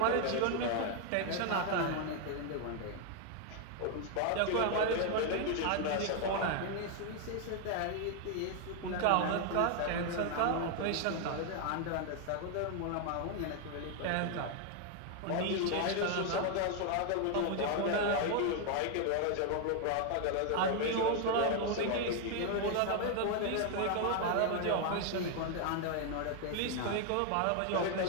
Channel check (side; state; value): both; different; correlation 0.00